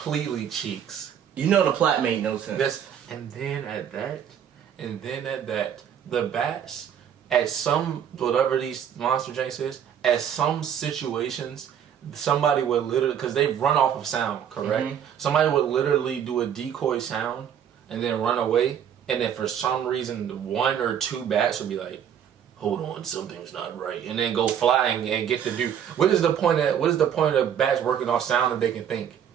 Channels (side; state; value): left; quieter; 8.9 dB